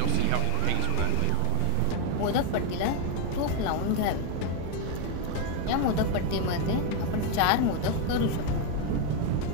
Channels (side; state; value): both; different; correlation 0.01